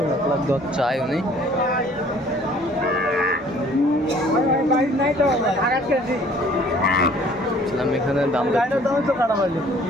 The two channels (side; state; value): both; normal; correlation 0.55